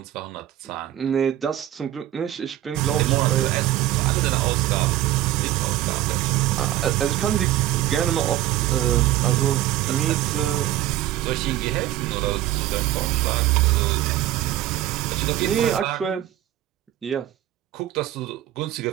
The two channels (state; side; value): quieter; left; 13.6 dB